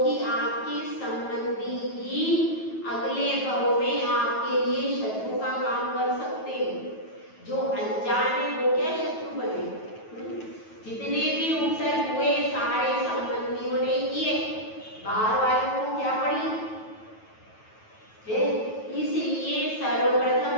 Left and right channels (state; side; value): late; right; 9.2 ms